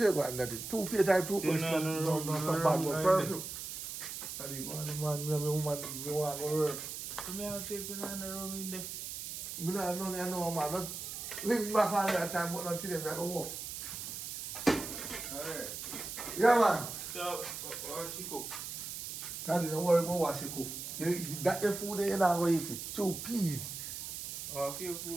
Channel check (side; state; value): right; noise; hiss, 7 dB below the sound